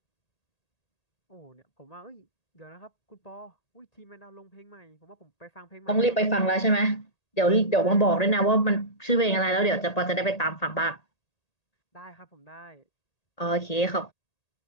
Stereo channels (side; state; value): right; late; 1.8 ms